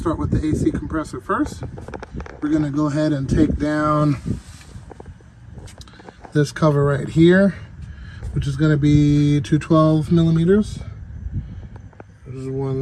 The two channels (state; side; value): identical; both; correlation 1.00